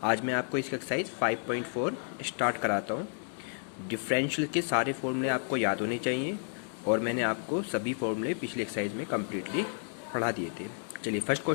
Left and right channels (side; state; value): right; silent; 57 dB below the other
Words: आज मैं आपको इस एक्सरसाइज 5.4 स्टार्ट कराता हूँ। डिफरेंशियल के सारे फॉर्मूले आपको याद होने चाहिए और मैंने आपको सभी फॉर्मूले पिछले एक्सरसाइज में कम्प्लीटली पढ़ा दिए थे। चलिए, फर्स्ट